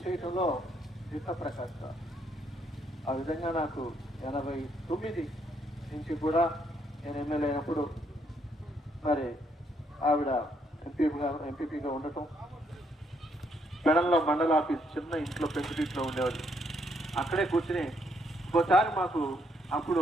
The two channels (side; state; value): both; normal; correlation 0.72